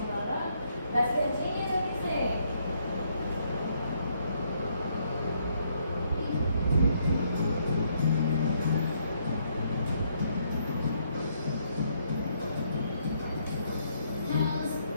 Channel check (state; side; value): inverted; both; correlation -0.71